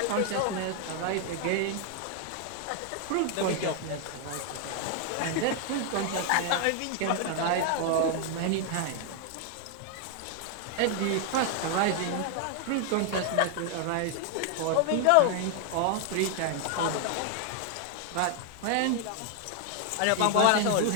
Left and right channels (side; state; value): both; different; correlation 0.00